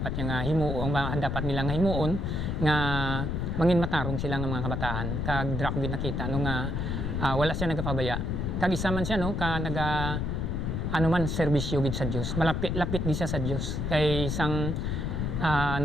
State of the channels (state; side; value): noise; left; rumble, 1 dB below the sound